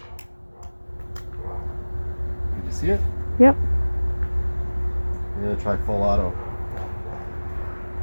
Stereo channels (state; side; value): inverted; both; correlation -1.00